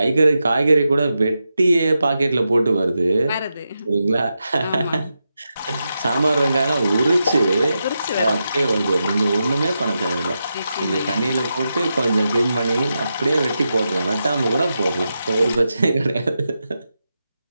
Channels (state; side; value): inverted; both; correlation -0.88